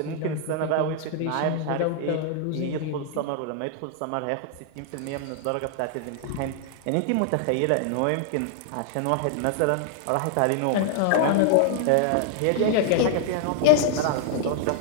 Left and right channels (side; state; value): both; different; correlation -0.01